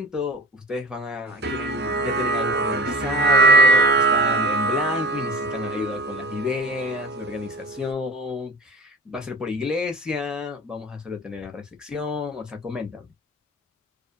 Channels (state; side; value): normal; both; correlation 0.38